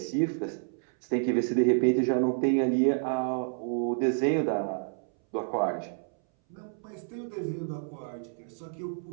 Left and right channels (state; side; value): silent; left; 58 dB below the other